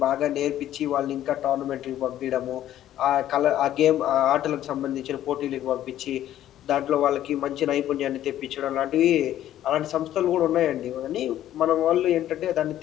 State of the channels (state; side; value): quieter; right; 12.3 dB